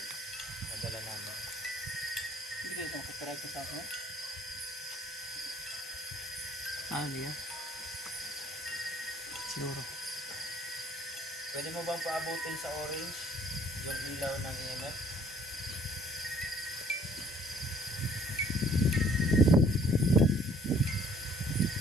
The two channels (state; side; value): normal; both; correlation 0.59